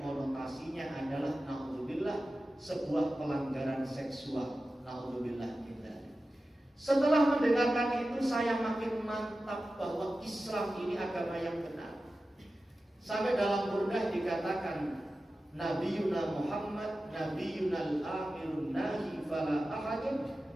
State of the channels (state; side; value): normal; both; correlation 0.94